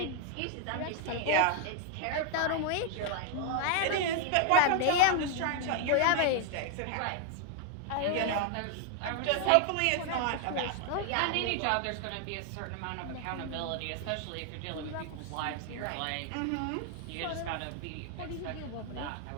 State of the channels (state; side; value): different; both; correlation 0.00